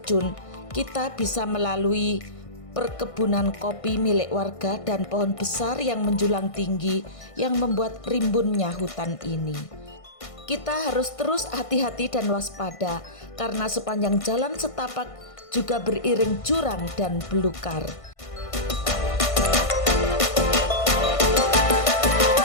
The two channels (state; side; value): late; right; 1.5 ms